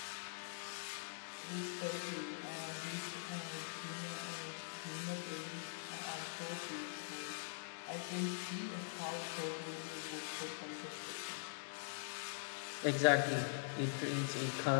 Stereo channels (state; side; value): silent; right; digital silence